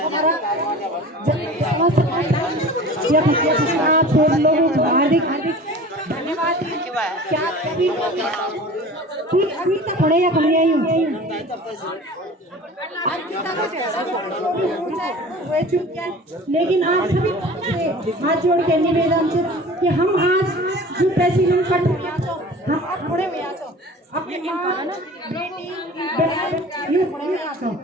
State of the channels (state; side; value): normal; both; correlation 0.40